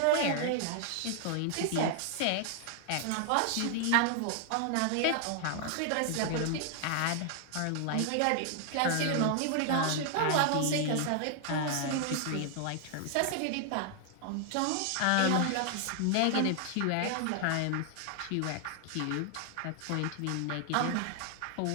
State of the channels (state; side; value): different; both; correlation 0.00